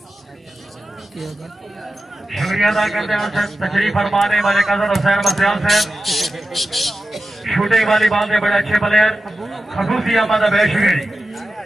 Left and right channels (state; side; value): normal; both; correlation 0.92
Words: शुक्रिया अदा करते हैं तशरीफ फरमाने वाले कजर हुसैन बसियाल साहब, शूटिंग वाली बात में बड़े अच्छे प्लेयर खसूसी अहमद बेशुगरी।